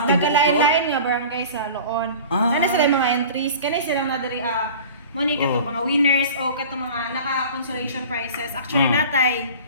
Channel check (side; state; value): both; inverted; correlation -0.40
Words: dagalain-lain nga barangay sa Loon. Nana sila yung mga entries kani silang nadiri money kato mga winners o kato mga naka-consolation prizes. Actually natay